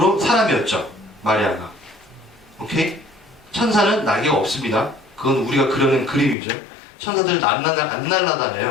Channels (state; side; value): drops out; right; at 6.4 s